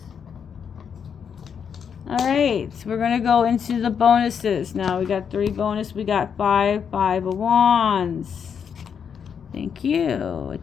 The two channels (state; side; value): quieter; right; 7.2 dB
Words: Alright, we're going to go into the bonuses. Now we got 3 bonus. We got 5 of Wands. Thank you. It